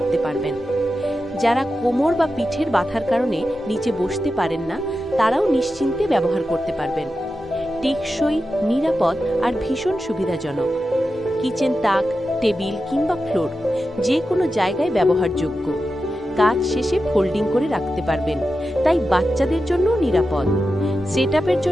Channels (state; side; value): normal; both; correlation 0.91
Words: পারবেন। যারা কোমর বা পিঠের ব্যথার কারণে নিচে বসতে পারেন না, তারাও নিশ্চিন্তে ব্যবহার করতে পারবেন। টেকসই, নিরাপদ আর ভীষণ সুবিধাজনক। কিচেন তাক, টেবিল কিংবা ফ্লোর যে কোনো জায়গায় ব্যবহারযোগ্য। কাজ শেষে ফোল্ডিং করে রাখতে পারবেন, তাই বাচ্চাদের জন্য নিরাপদ। সেটআপের